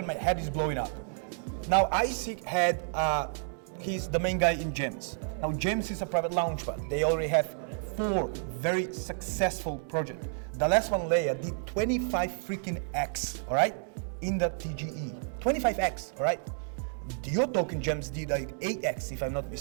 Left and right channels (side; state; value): left; silent; 57 dB below the other